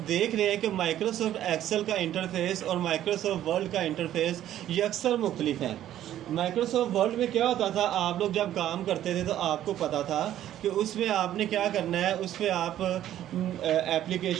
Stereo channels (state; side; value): quieter; left; 12.1 dB